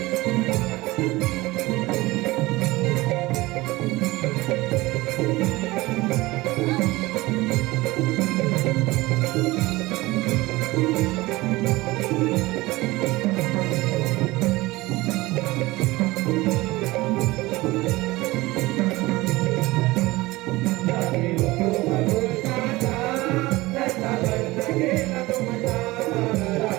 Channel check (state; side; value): quieter; left; 20.2 dB